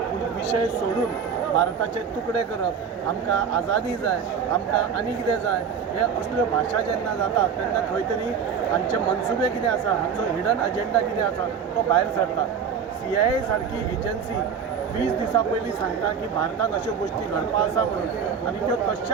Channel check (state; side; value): quieter; left; 6.9 dB